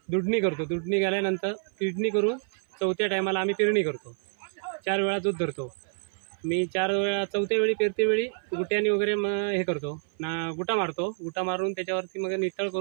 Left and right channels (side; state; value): left; silent; 57 dB below the other